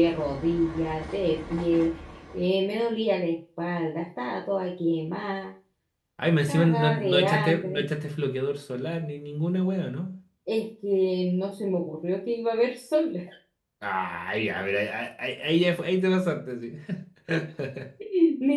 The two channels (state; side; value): identical; both; correlation 1.00